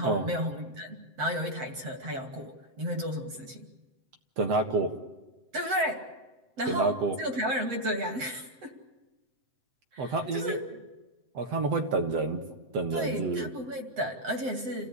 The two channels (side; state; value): left; late; 7.8 ms